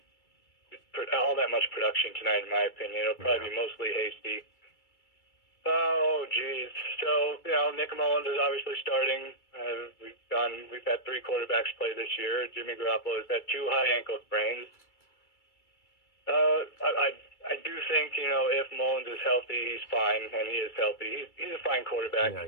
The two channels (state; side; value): late; right; 2.3 ms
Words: production tonight, in my opinion. It'll probably be mostly Hasty. Oh, geez. So, Nick Mullins is obviously starting. We've had three quarterbacks play this year. Jimmy Garoppolo has had 2 high ankle sprains. I do think, if Mullins is healthy, he's fine, and he is healthy. He's a fine quarterback.